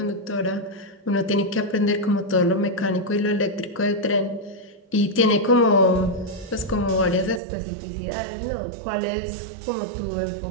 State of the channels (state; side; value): drops out; left; at 7.4 s